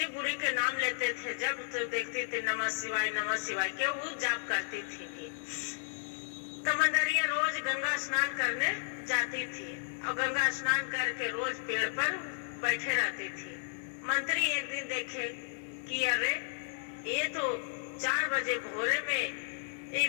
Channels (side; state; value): right; silent; digital silence